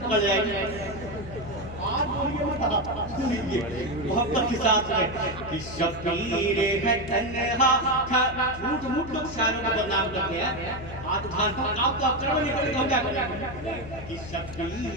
پکڑ جائے گی. آج بولیے مت, سنیے محبت کے ساتھ میں کہ شبیر ہے تنہا کھڑے. جھوٹ موٹ لوگ شاعروں کو بدنام کرتے ہیں. آج دھان آپ تو اکڑ میں نکلے تو کیا کریں کہ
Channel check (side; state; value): left; noise; hum, 13 dB below the sound